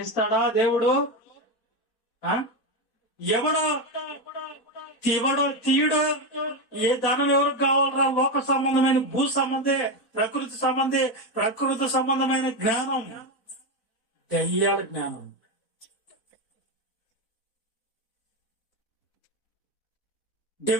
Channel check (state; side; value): late; right; 4.1 ms